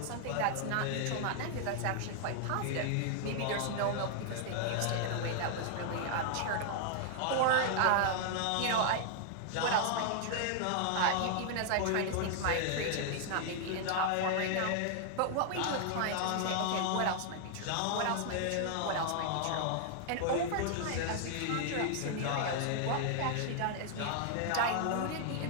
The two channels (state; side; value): different; both; correlation 0.00